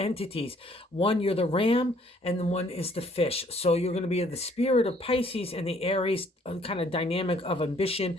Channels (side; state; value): both; normal; correlation 0.62